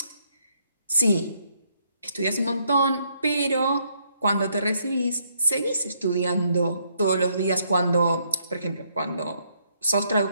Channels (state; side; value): inverted; both; correlation -0.72